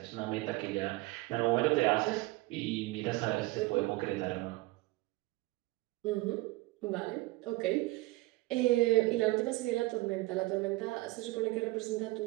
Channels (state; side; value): quieter; left; 20.9 dB